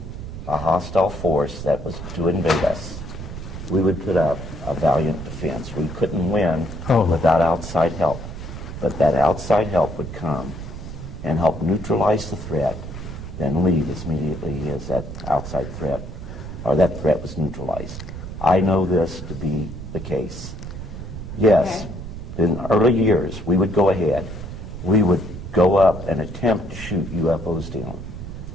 a hostile force that was to invade us, we would put up a valiant defense. We couldn't win without outside help. But that outside help would come and help neutralize the threat, then leave as immediately as that outside threat, or that threat was neutralized. I know this to be the case. Yes, Okay. in early years, we would go ahead. We would go up and attempt to shoot UFOs down.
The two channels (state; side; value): noise; right; rumble, 9 dB below the sound